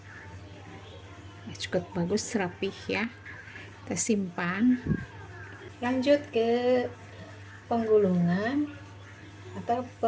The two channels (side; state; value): both; identical; correlation 1.00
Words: Nah, cukup bagus, rapih ya. Kita simpan. Lanjut ke penggulungan atau